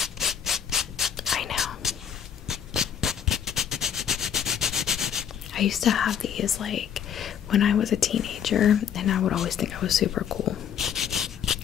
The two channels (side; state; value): right; quieter; 8.4 dB